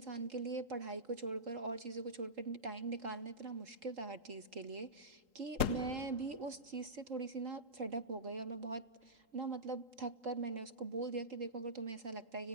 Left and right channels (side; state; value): left; late; 3.8 ms